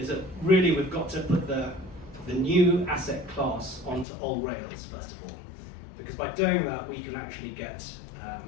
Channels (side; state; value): right; drops out; at 4.0 s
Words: that really we've got to put the new asset class onto old rails first of all, because by doing that we can actually get